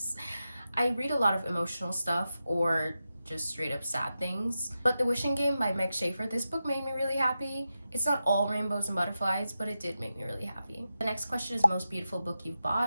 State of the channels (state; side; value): inverted; both; correlation -0.90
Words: I read a lot of emotional stuff or just straight up sad things. But The Wishing Game by Meg Schaefer, this book made me really happy. It's not all rainbows and butterflies, but it did make me really happy. The next question is most beautiful book you've